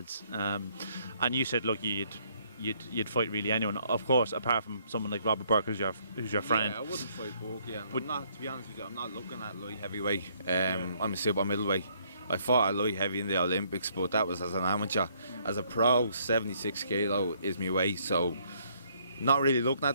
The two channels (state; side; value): inverted; both; correlation -0.67